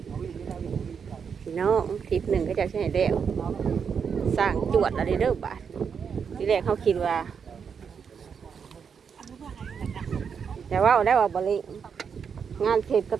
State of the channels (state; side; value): quieter; left; 6.7 dB